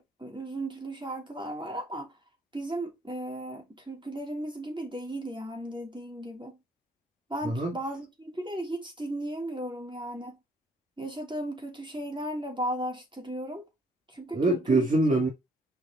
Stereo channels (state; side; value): normal; both; correlation 0.64